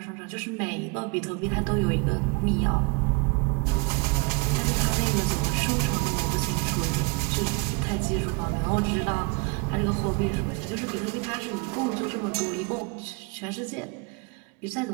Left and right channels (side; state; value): left; quieter; 28.0 dB